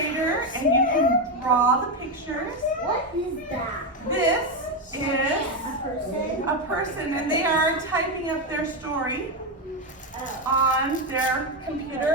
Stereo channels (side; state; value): both; normal; correlation 0.09